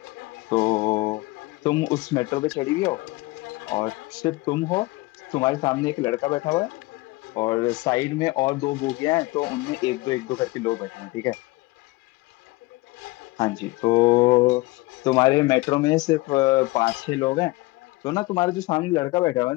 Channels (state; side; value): quieter; right; 21.5 dB